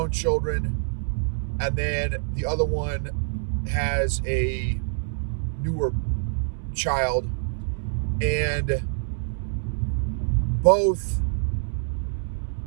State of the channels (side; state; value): left; silent; 61 dB below the other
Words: children, and then the other one has a newer child, and both